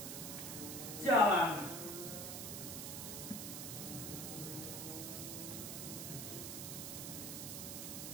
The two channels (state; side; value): noise; right; hiss, 5 dB below the sound